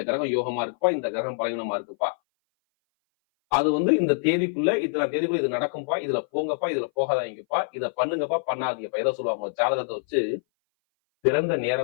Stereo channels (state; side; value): silent; right; 58 dB below the other